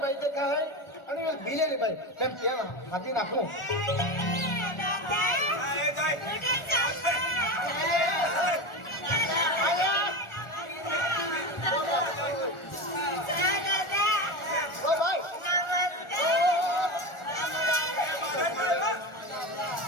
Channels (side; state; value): right; late; 1.4 ms